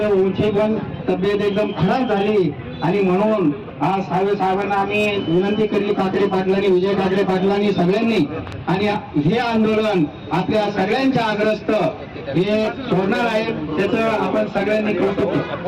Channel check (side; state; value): both; identical; correlation 1.00